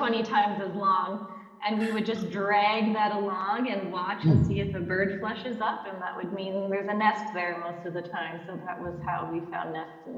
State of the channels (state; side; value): identical; both; correlation 1.00